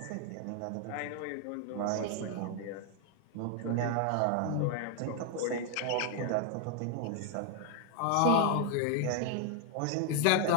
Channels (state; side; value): different; both; correlation 0.00